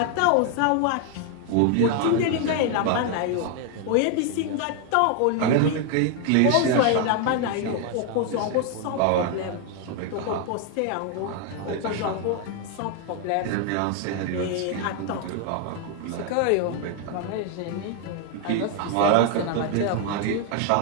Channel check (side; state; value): both; different; correlation 0.00